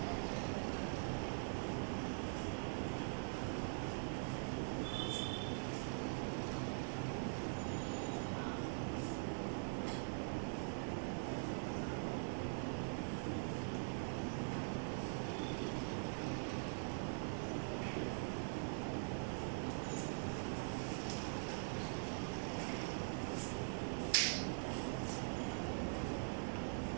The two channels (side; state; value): left; silent; digital silence